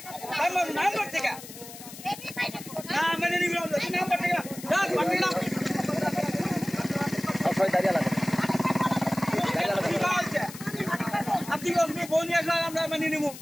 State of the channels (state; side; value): noise; left; hiss, 14 dB below the sound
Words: নাম্বার থেকে না মানে নিবি নাম্বার থেকে দাঁড়িয়ে লাগে আপনি ফোন নিয়ে আসলে আমরা মানিয়ে নিবো